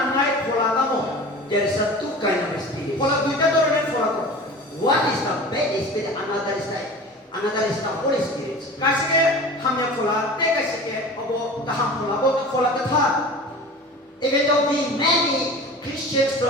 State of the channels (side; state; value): both; normal; correlation 0.37